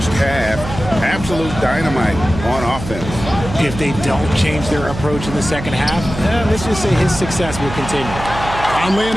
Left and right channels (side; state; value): right; noise; hum, 9 dB below the sound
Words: half. Absolute dynamite on offense. If they don't change their approach in the second half, let's just say his success will continue. Conley